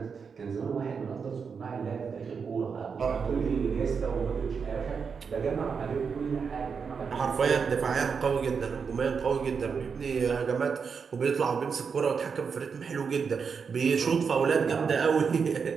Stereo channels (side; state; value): left; quieter; 5.9 dB